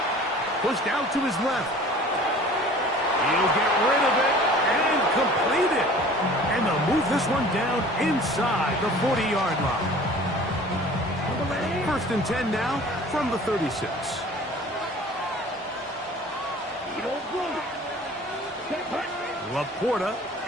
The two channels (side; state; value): both; normal; correlation 0.46